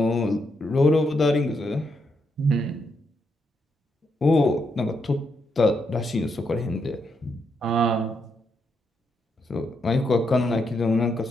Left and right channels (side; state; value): both; normal; correlation 0.80